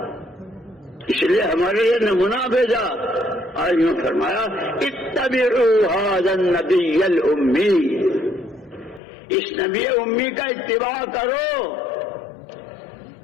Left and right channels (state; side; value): drops out; right; at 9.0 s